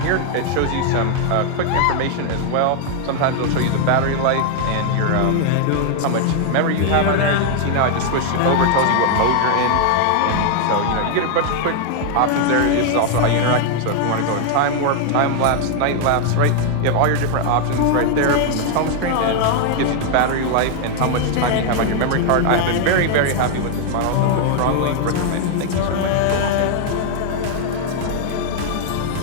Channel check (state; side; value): different; both; correlation 0.00